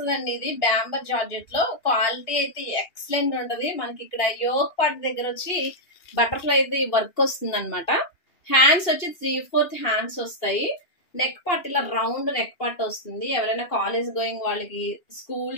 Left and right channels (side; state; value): right; late; 2.7 ms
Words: ఇది బ్యాంబర్ జార్జెట్ లో క్వాలిటీ అయితే ఎక్సలెంట్ ఉంటది. మనకి ఇక్కడ యోక్ పార్ట్ దగ్గర వచ్చి బటర్ఫ్లై అయితే వర్క్ వస్తుంది అనమాట. హ్యాండ్స్ వచ్చి 3/4 హ్యాండ్స్ వస్తాయి. నెక్ పార్ట్ ఇలా రౌండ్ నెక్ పార్ట్ వస్తుంది. ఎవరైనా కాలేజ్ గోయింగ్ వాళ్ళకి,